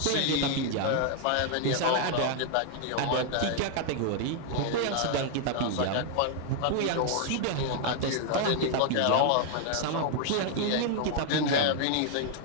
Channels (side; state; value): both; different; correlation 0.00